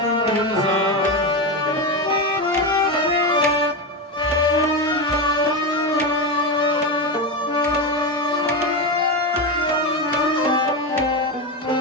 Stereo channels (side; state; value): both; normal; correlation 0.15